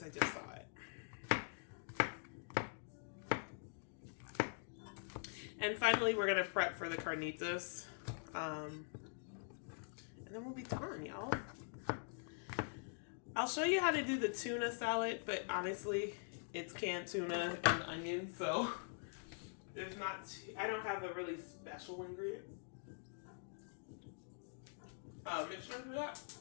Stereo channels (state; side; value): silent; right; digital silence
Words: I just saw it. And finally, we're gonna prep for the carnitas, and then we'll be done, y'all. I'll show you how to do the tuna salad, but honestly, it's canned tuna and onions, so I don't have a really special ingredient. Mixture for that.